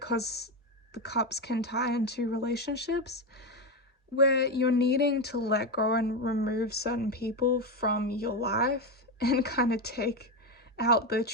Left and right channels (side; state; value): both; normal; correlation 0.12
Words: because the cups can tie into relationships where you're needing to let go and remove certain people from your life and kind of take out